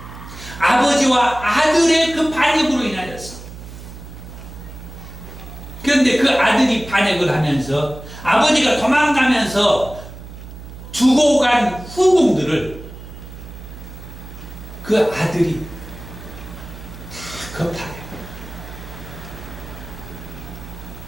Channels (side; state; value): right; noise; hum, 14 dB below the sound